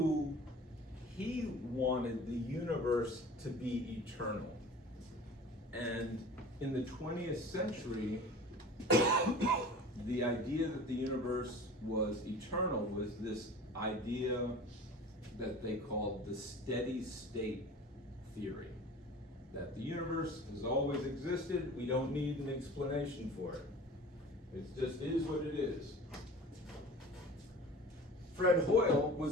he wanted the universe to be eternal. And in the 20th century, the idea that the universe was eternal was this idea that they called the steady state theory. That the universe has always existed, we don't need an explanation for it. It just is what it is. Fred Hoyle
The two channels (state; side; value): normal; both; correlation 0.40